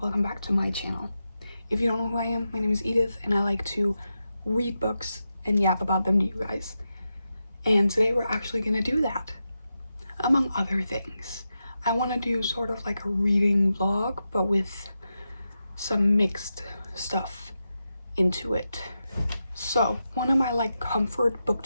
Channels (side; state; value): both; inverted; correlation -0.89